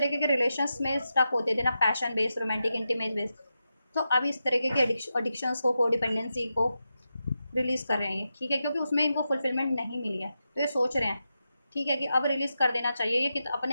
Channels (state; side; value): inverted; both; correlation -0.88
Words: के रिलेशंस में स्टक होते थे ना, passion based, romantic, intimate based, तो अब इस तरीके के एडिक्शंस को, कोडिपेंडेंसी को रिलीज़ कर रहे हैं ये, ठीक है, क्योंकि उसमें इनको फुलफिलमेंट नहीं मिली है, तो ये सोच रहे हैं, ठीक है, कि अब रिलीज़ कर देना चाहिए। ये